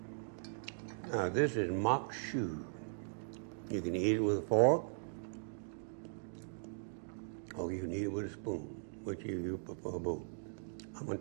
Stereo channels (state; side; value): silent; left; digital silence